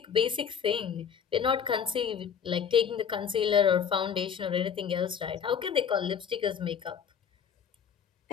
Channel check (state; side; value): quieter; right; 7.5 dB